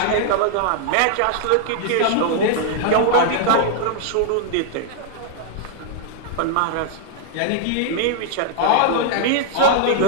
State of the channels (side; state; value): both; different; correlation 0.00